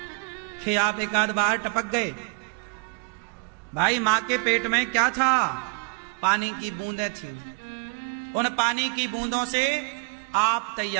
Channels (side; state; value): left; quieter; 33.6 dB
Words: कि आप एक आध बार टपक गए? भाई मां के पेट में क्या था? पानी की बूंदें थी। उन पानी की बूंदों से आप